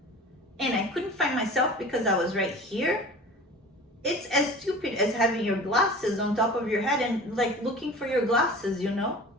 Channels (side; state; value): both; normal; correlation 0.39